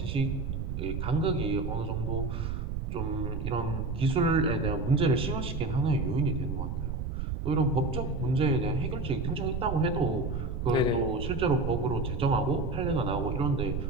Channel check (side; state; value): right; noise; rumble, 3 dB below the sound